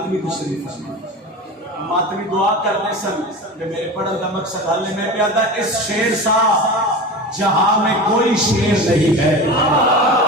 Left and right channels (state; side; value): normal; both; correlation 0.30